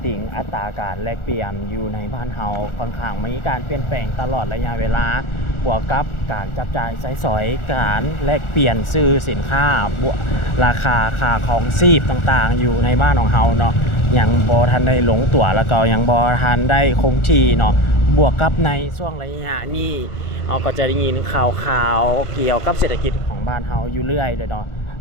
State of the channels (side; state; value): right; late; 1.4 ms